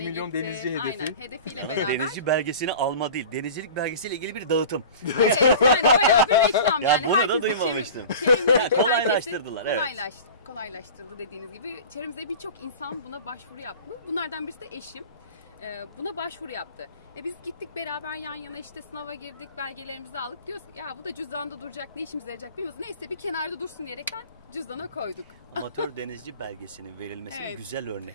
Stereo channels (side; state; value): both; inverted; correlation -0.38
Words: 1 milyon gitti. denizci hedefi. Aynen, hedefiyle beraber. Denizci belgesini alma değil, denizcilik belgesiyle ilgili bir dağıtım. Evet, yani bayağı bir reklam Ya yani. bunu da Herkesi duymamıştım. çevremizdeki Kolaylaştırdılar, evet. Kolaylaştırdı dediğiniz gibi. Çevremizde birçok insan buna başvuru yaptı. Bunlardan birisi de eşim. Buna başvuru yaptı. Biz gittik beraber yan yana işte sınava girdik, belgelerimizi aldık. Diyoruz ya bu da cüzdanda duracak, ne işimize yarayacak bilmiyoruz. Neyse bir kenarda dursun diyerekten cüzdana koyduk. Amatör denizci belgesinin verilmesinin Evet. güzel